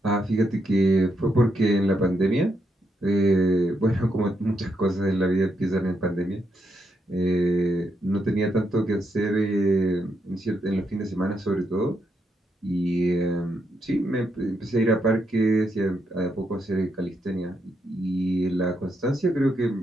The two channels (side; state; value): both; normal; correlation 0.80